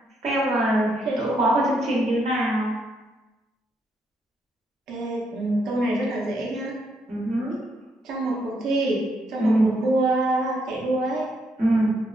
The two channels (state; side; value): normal; both; correlation 0.76